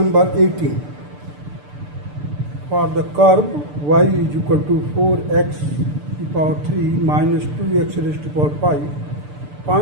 18. For the curve y is equal to 4x to the power 3 minus 2x raised to the power 5,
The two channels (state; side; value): late; left; 6.8 ms